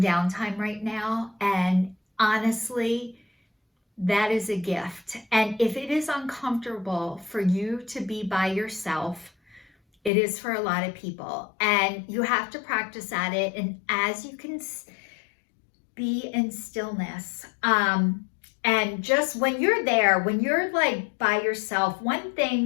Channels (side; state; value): right; drops out; at 10.1 s